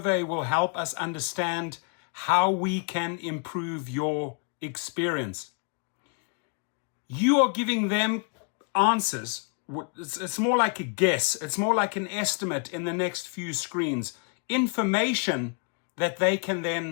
will help us understand how we can improve your experience. You are giving them answers. It's more like a guess. It's more like an estimate in the next few screens. Information that they can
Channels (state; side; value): quieter; right; 37.8 dB